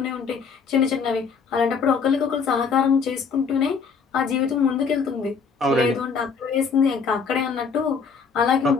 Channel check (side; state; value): right; quieter; 5.6 dB